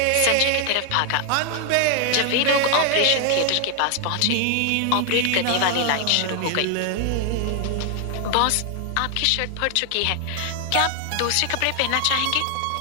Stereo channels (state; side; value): different; both; correlation 0.00